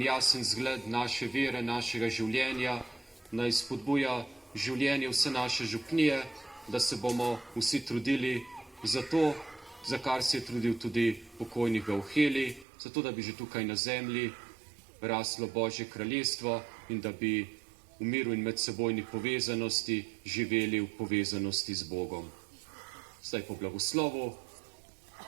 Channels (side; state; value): left; drops out; at 12.7 s